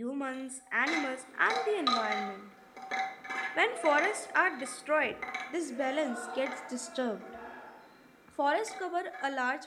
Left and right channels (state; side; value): identical; both; correlation 1.00